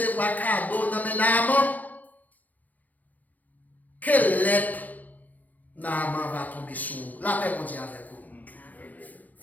cadeau dans mes Naaman. Quelle lettre Naaman va tomber sur? La paix, on dit avec vous.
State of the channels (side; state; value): right; late; 0.080 ms